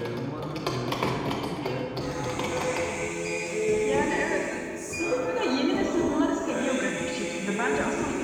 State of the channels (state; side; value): identical; both; correlation 1.00